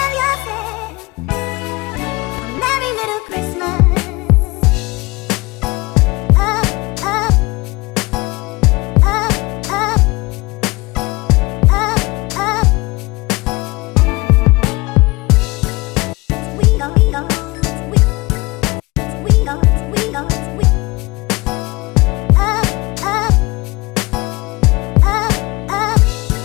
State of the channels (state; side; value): quieter; right; 23.3 dB